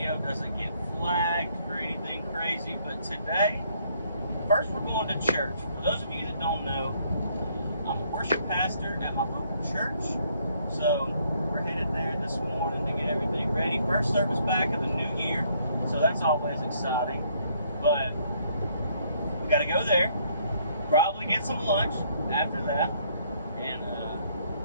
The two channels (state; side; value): inverted; both; correlation -0.66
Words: doesn't get flagged for anything crazy, but today, first we're going to church. For those of you that don't know, I'm a worship pastor at my local church, so we're headed there this morning to get everything ready. First service back of the new year, so that's always exciting, but we got to go there, probably get some lunch after that, and